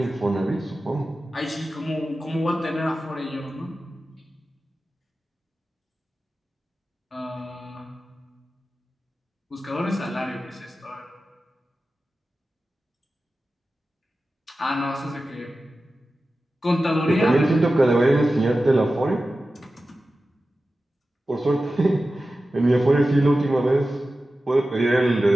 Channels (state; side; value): normal; both; correlation 0.94